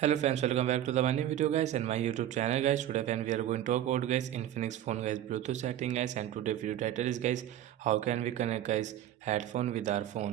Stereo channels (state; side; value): quieter; left; 11.9 dB